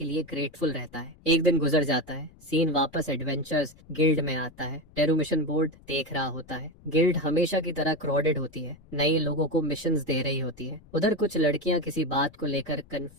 लिए ग्रेटफुल रहता है। एक दिन गुजर जाता है। सीन वापस एडवेंचर्स गिल्ड में आता है। टेरू मिशन बोर्ड देख रहा होता है। गिल्ड हमेशा की तरह क्राउडेड होती है। नए लोगों को मिशंस दे रही होती है। उधर कुछ लड़कियां किसी बात को लेकर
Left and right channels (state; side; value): noise; left; rumble, 25 dB below the sound